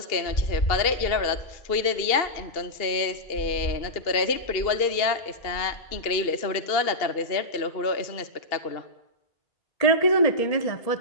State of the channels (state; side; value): late; right; 2.7 ms